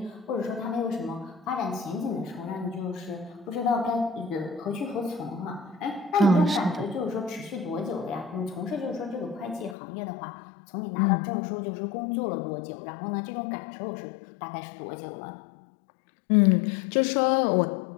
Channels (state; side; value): drops out; right; at 9.8 s